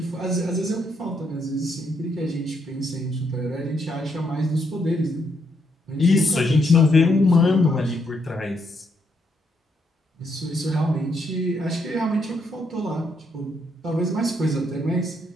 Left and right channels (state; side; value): normal; both; correlation 0.76